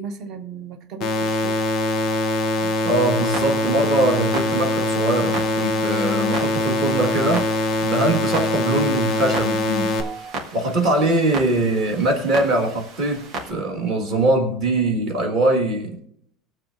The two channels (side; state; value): both; normal; correlation 0.40